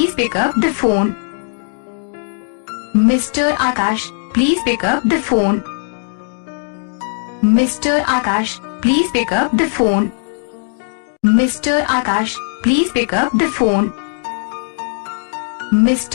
pick up the phone. Mr. Akash, please pick up the phone. Mr. Akash, please pick up the phone. Mr. Akash, please pick up the phone.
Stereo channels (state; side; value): silent; right; digital silence